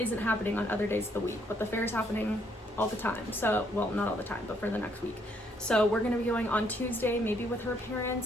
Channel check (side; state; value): both; normal; correlation 0.70